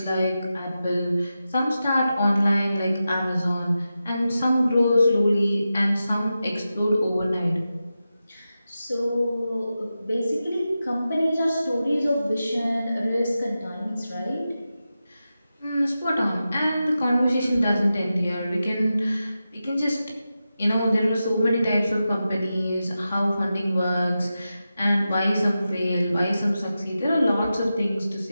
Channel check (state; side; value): inverted; both; correlation -0.91